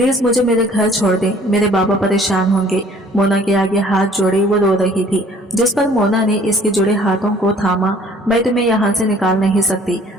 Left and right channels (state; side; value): normal; both; correlation 0.55